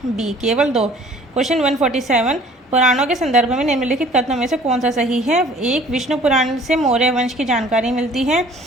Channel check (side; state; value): both; normal; correlation 0.52